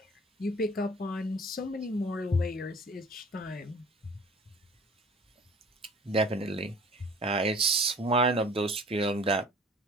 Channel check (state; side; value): normal; both; correlation 0.48